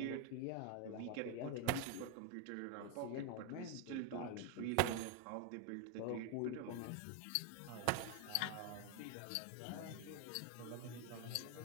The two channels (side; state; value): both; different; correlation 0.01